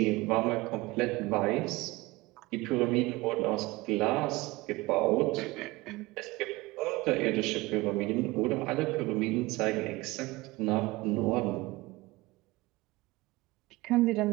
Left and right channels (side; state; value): left; quieter; 21.2 dB